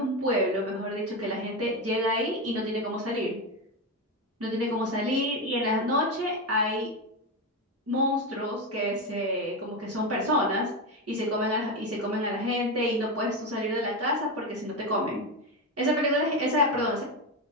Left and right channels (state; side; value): normal; both; correlation 0.14